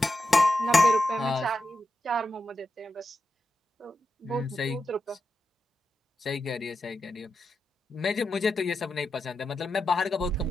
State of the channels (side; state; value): both; normal; correlation 0.88